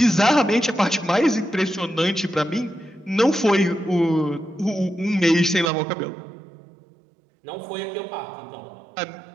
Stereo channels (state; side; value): drops out; left; at 5.7 s